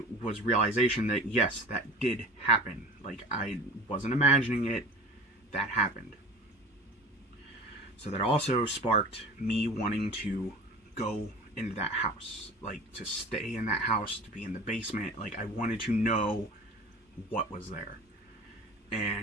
was realization that, yes, that did happen. Like, I wasn't imagining it, that happened. So that also sparked me wanting to go into that house, like, to stay in that house, to be in the basement. Like, I wanted to know what was there.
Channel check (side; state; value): both; normal; correlation 0.39